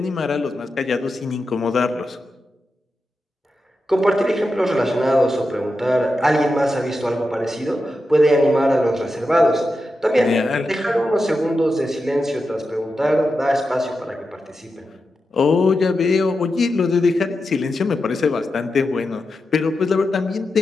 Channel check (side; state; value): both; normal; correlation 0.89